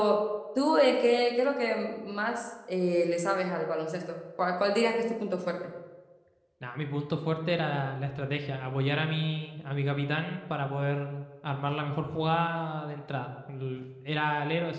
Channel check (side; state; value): both; identical; correlation 1.00